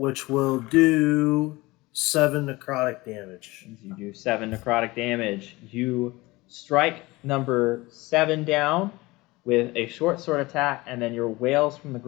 will do 7 necrotic damage. You do 7 necrotic damage. You strike number 7 down with a short sword attack, and then your Whales from the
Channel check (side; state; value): right; quieter; 21.3 dB